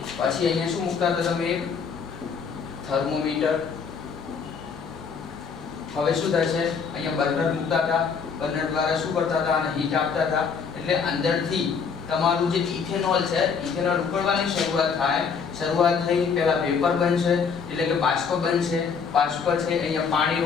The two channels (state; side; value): quieter; right; 6.0 dB